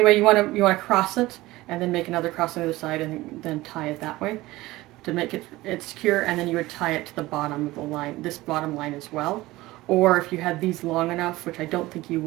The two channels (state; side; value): quieter; left; 18.6 dB